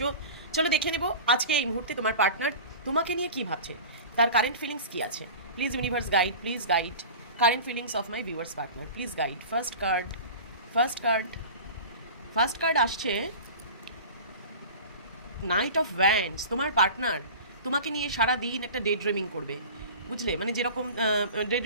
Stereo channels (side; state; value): both; inverted; correlation -0.35